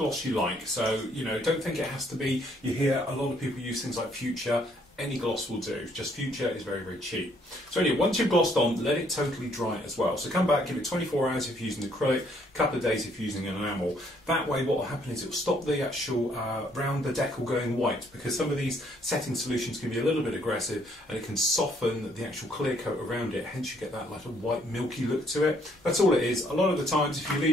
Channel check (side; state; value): both; normal; correlation 0.67